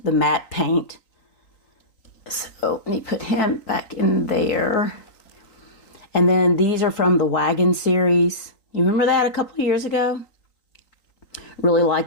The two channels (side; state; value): right; late; 3.9 ms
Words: matte paint. So let me put him back in there. And then these are from the Wagon series. You remember that a couple of years ago? Really